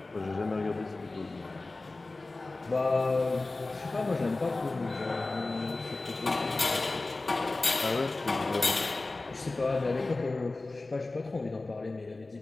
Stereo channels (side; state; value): right; quieter; 3.2 dB